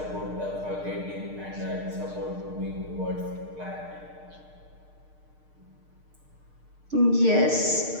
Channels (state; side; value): late; left; 6.6 ms